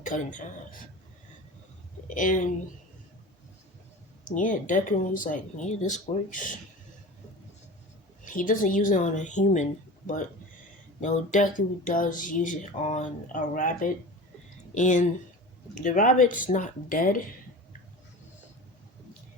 cut in half. And yeah, Deku like, yeah, this works. He doesn't use it on a human, but Deku does use it on a rabbit. And The rabbit's not dead.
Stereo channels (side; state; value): both; normal; correlation 0.34